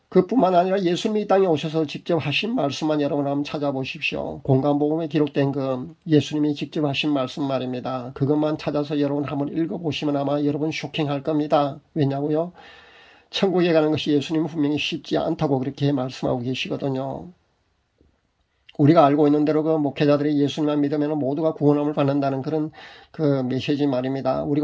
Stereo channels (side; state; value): both; identical; correlation 1.00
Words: 그뿐만 아니라 예수님이 이 땅에 오셔서 직접 하신 말씀만 여러분 한번 찾아보십시오. 공간복음에 기록된 그 예수님이 직접 하신 말씀 말입니다. 그것만 찾아서 여러분 한번 읽어보시면 아마 여러분 쇼킹할 겁니다. 왜냐고요? 천국에 가는 것이 예수님은 분명히 쉽지 않다고 그렇게 말씀하고 계시거든요. 우리가 알고 있는 대로 그 목회자들이 예수님만 믿으면 모두가 구원함을 받는다는 그런 그 메시지 말입니다.